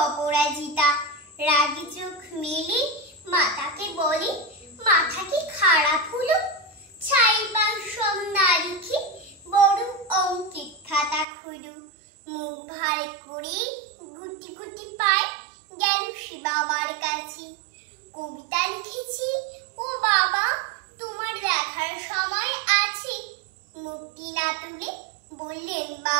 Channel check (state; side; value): drops out; left; at 11.2 s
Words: অপরাজিতা। রাগি চোখ মেলে মাতাকে বলে, মাথা কি খারাপ হলো? ছাইবার সব না লিখে বড় অঙ্কের খাতা খুলো। মুখ ভার করে গুটি গুটি পায় গেল সে বাবার কাছে। কবিতা লিখেছি ও বাবা, তোমার দেখার সময় আছে? মুখটি না তুলে বললেন